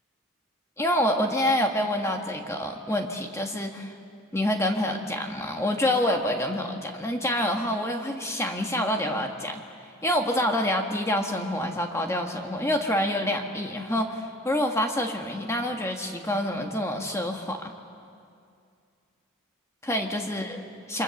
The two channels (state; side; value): normal; both; correlation 0.46